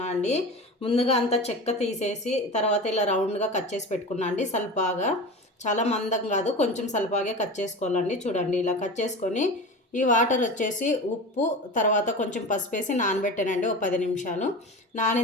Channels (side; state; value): both; normal; correlation 0.30